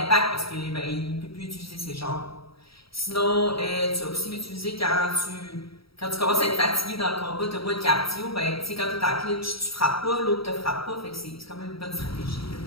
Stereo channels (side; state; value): right; late; 0.76 ms